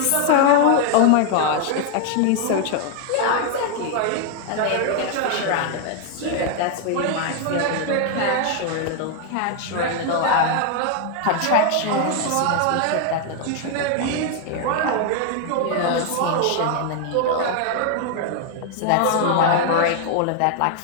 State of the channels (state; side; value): different; both; correlation 0.00